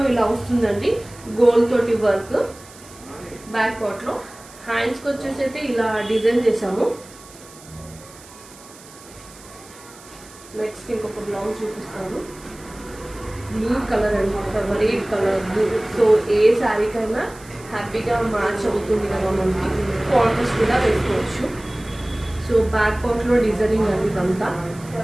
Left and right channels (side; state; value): right; noise; hiss, 21 dB below the sound